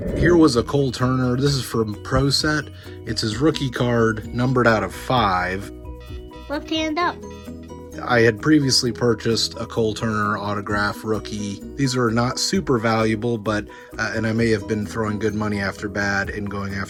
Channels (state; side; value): identical; both; correlation 1.00